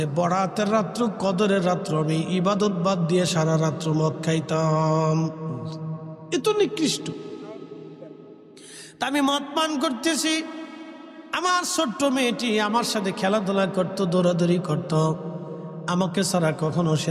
বরাতের রাত্র, কদরের রাত্র আমি ইবাদত বাদ দিয়ে সারা রাত্র মদ খাইতাম। এত নিকৃষ্ট। তা আমি মদ পান করতেছি, আমার ছোট্ট মেয়েটি আমার সাথে খেলাধুলা করতো, দৌড়াদৌড়ি করতো, আমাকে ছাড়া কখনো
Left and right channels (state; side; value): identical; both; correlation 1.00